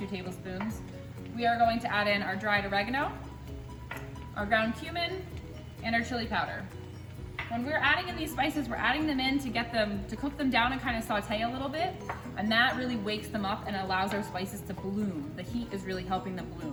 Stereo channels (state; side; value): identical; both; correlation 1.00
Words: tablespoons. We are going to add in our dried oregano, our ground cumin, and our chili powder. When we're adding in these spices, we're adding them in to cook them down and kind of saute a little bit, and that really wakes them up and allows our spices to bloom. The heat is really helping them